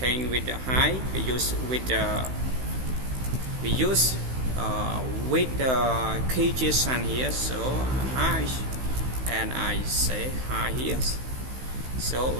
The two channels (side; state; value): left; late; 16 ms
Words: with the height. We use with the key JSON here. So height, and I say height here. So